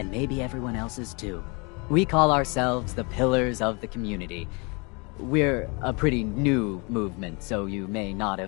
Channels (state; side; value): quieter; right; 30.5 dB